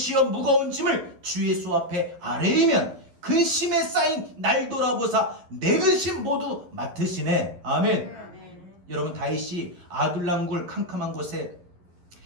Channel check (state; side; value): late; left; 11 ms